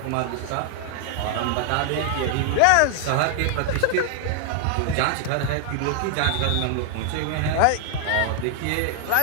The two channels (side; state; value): both; different; correlation 0.00